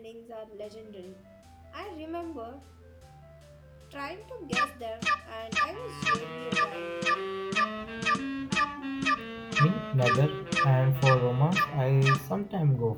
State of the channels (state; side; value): identical; both; correlation 1.00